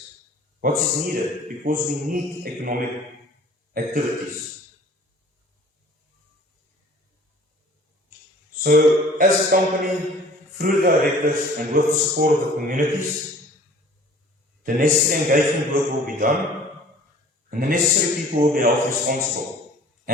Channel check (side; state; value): both; normal; correlation 0.50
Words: What is needed? Because we need economic activities. So, as a company, through the directors and with the support of the communities, the necessary engagement work will be done, and the necessary people will be held responsible